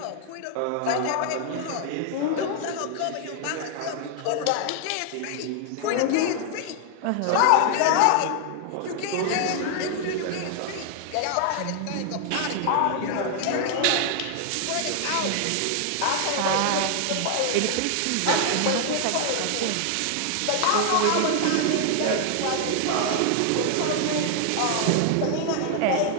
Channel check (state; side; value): different; both; correlation 0.00